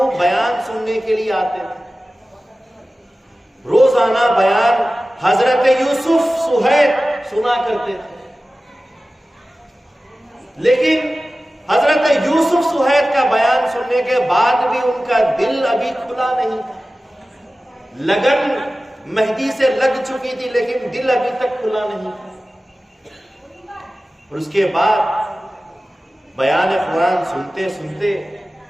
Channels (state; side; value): normal; both; correlation 0.96